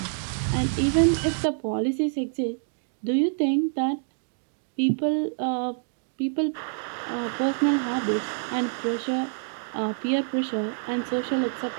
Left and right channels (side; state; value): left; silent; digital silence